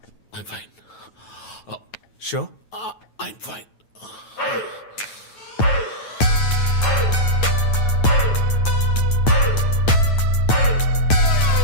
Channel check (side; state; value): right; late; 9.2 ms